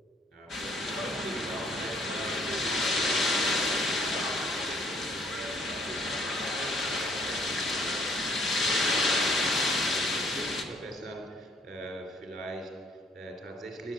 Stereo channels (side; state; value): both; normal; correlation 0.62